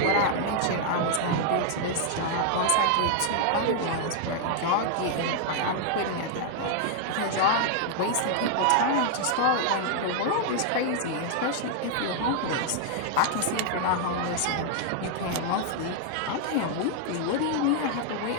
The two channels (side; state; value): both; different; correlation 0.00